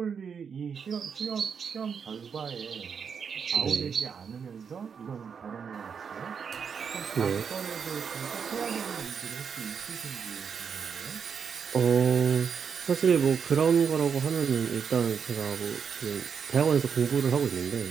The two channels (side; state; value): left; quieter; 6.6 dB